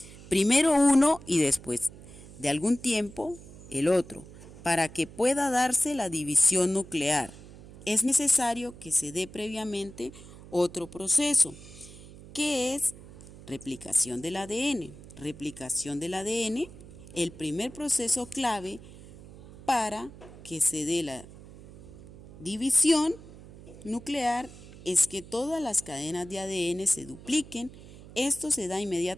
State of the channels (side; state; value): right; noise; hum, 18 dB below the sound